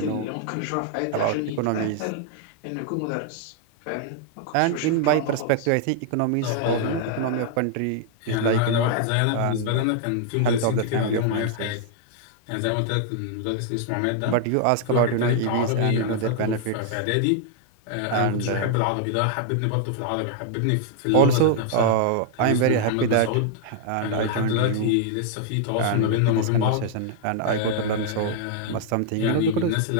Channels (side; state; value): both; different; correlation 0.00